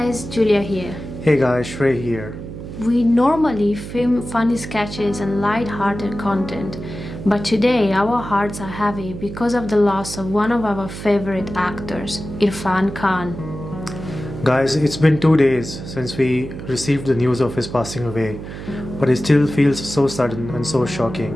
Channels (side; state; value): right; noise; hum, 10 dB below the sound